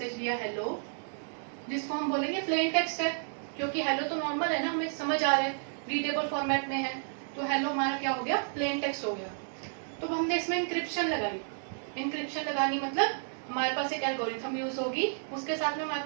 लिया hello, जिसको हम बोलेंगे प्लेन टेक्स्ट है, क्योंकि हेलो तो नॉर्मल है ना, हमें समझ आ रहा है, रीडेबल फॉर्मेट में है, तो हेलो हमारा क्या हो गया, प्लेन टेक्स्ट हो गया. तो हमने इसमें इंक्रिप्शन लगाई. इंक्रिप्शन लगानी मतलब हमारे पास एक एल्गोरिथम यूज होगी, उसके साथ में हमारे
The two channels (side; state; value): left; silent; digital silence